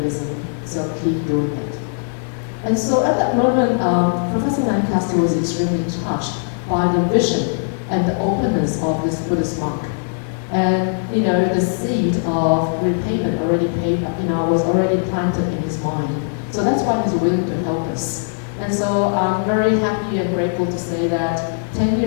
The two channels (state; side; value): silent; right; digital silence